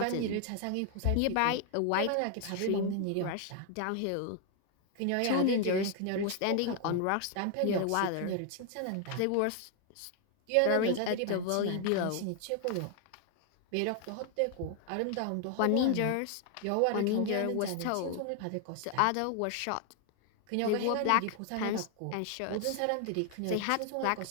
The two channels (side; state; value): both; different; correlation 0.00